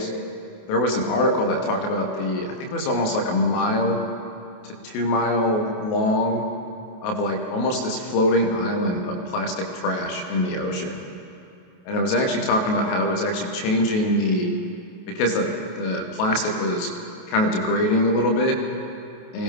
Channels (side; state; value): right; late; 28 ms